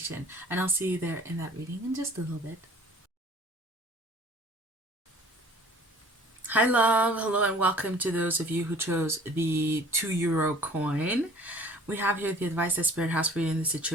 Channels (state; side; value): normal; both; correlation 0.50